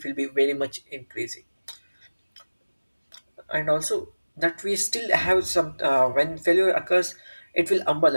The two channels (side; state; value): both; inverted; correlation -1.00